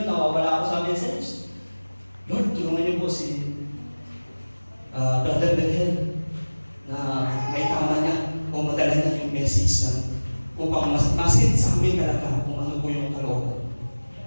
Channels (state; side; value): inverted; both; correlation -1.00